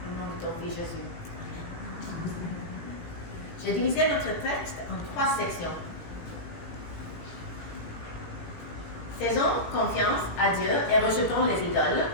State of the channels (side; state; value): right; late; 17 ms